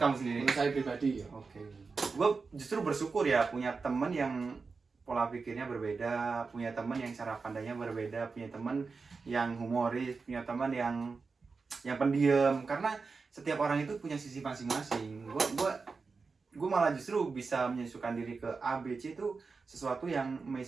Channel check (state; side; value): quieter; left; 4.5 dB